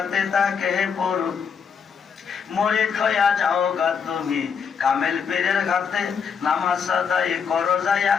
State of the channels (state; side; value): quieter; right; 6.5 dB